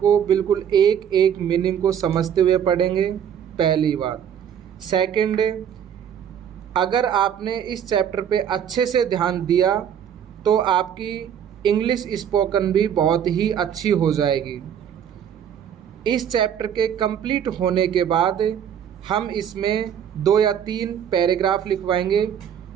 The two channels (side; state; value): left; quieter; 8.8 dB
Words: बिल्कुल एक एक मीनिंग को समझते हुए पढ़ेंगे, पहली बात। सेकंड, अगर आपने इस चैप्टर पे अच्छे से ध्यान दिया तो आपकी इंग्लिश स्पोकन भी बहुत ही अच्छी हो जाएगी। इस चैप्टर के कंप्लीट होने के बाद हम इसमें 2 या 3 पैराग्राफ लिखवाएंगे,